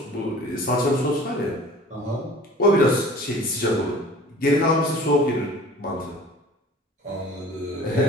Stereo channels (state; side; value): normal; both; correlation 0.45